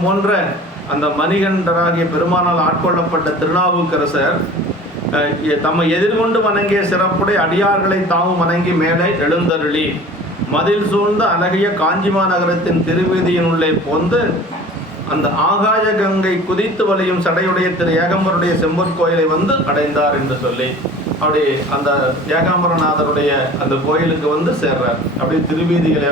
போன்ற அந்த மணிகண்டராகிய பெருமானால் ஆட்கொள்ளப்பட்ட திருநாவுக்கரசர் தம்மை எதிர்கொண்டு வணங்கிய சிறப்புடைய அடியார்களை தாமும் வணங்கி மேலே எழுந்தருளி மதில் சூழ்ந்த அழகிய காஞ்சிமா நகரத்தின் திருவீதியினுள்ளே போந்து அந்த ஆகாய கங்கை குதித்து வலியும் சடையுடைய திரு ஏகாம்பருடைய செம்பொற்கோயிலை வந்து அடைந்தார் என்று சொல்லி அப்படி அந்த ஏகாம்பரநாதருடைய அந்த கோயிலுக்கு வந்து சேர்றார். அப்படி திருவீதிகள்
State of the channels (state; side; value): normal; both; correlation 0.43